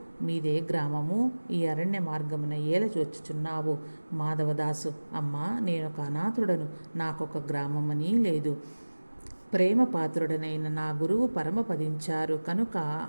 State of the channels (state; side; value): inverted; both; correlation -1.00